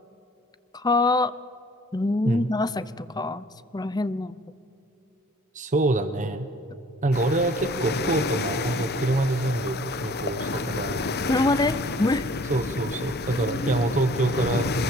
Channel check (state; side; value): normal; both; correlation 0.54